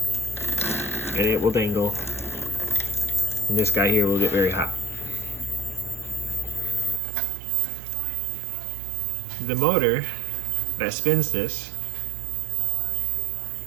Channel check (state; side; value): drops out; left; at 7.0 s